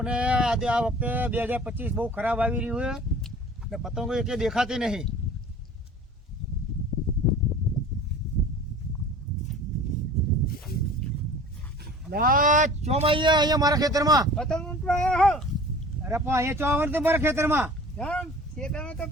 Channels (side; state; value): both; normal; correlation 0.43